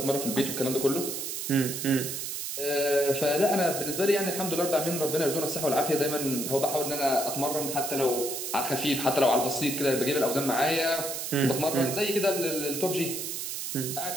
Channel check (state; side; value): noise; right; hiss, 4 dB below the sound